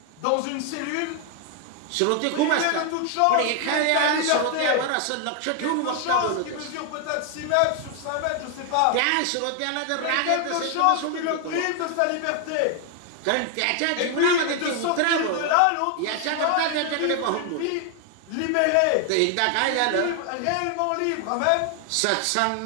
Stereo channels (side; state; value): both; different; correlation 0.00